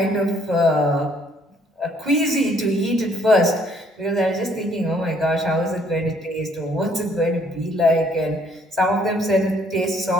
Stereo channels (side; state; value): both; normal; correlation 0.64